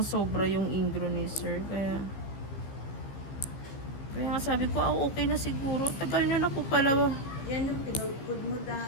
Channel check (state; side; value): late; right; 15 ms